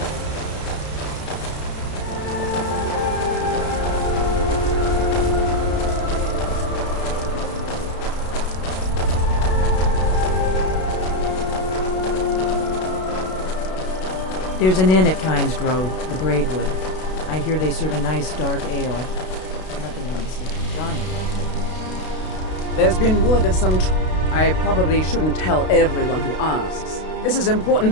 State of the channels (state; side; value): late; right; 32 ms